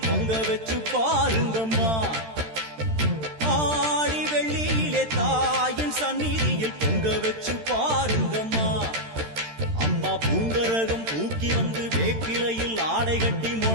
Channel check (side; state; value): left; late; 13 ms